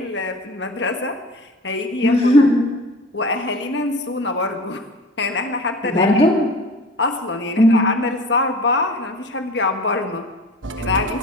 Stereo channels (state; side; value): normal; both; correlation 0.39